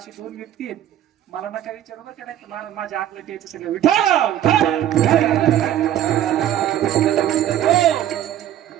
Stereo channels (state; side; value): quieter; left; 11.7 dB